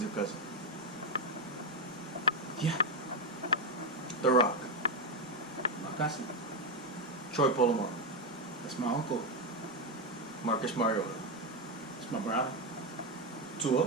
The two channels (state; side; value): normal; both; correlation 0.08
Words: a cousin? Yeah, The Rock, my cousin. Troy Polamalu, That's my uncle. Marcus Mariota, It's my brother. Tua,